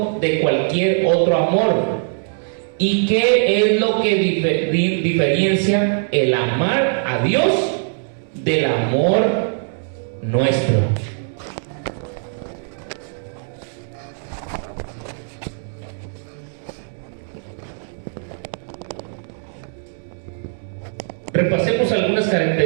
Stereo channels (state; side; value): silent; left; digital silence